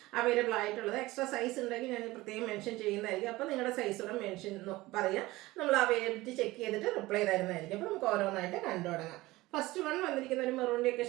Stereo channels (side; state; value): left; quieter; 19.2 dB